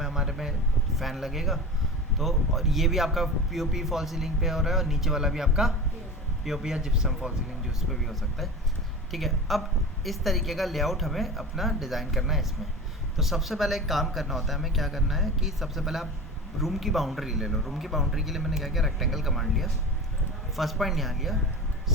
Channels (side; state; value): both; normal; correlation 0.32